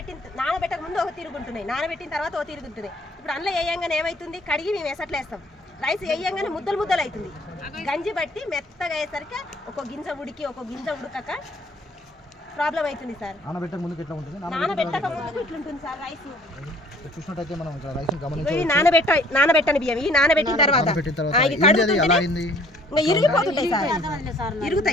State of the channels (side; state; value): both; normal; correlation 0.57